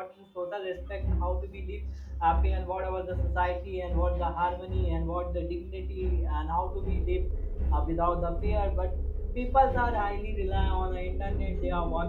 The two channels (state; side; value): identical; both; correlation 1.00